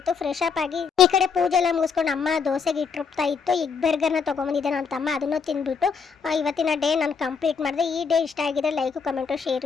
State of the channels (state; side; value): quieter; right; 5.8 dB